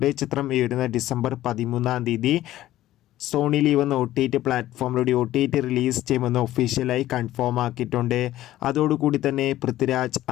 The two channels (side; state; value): right; quieter; 14.4 dB